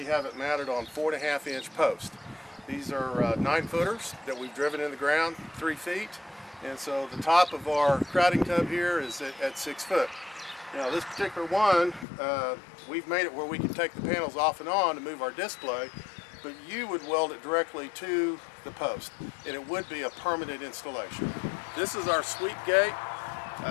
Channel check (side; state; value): right; drops out; at 12.1 s